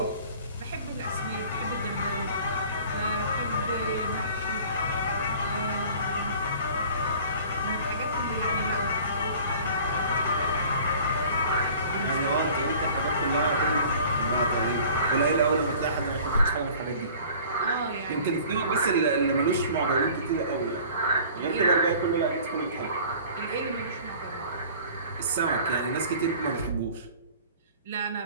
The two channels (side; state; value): both; inverted; correlation -0.47